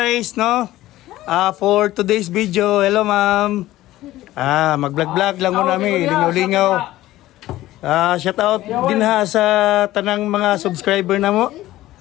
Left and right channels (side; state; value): right; quieter; 15.8 dB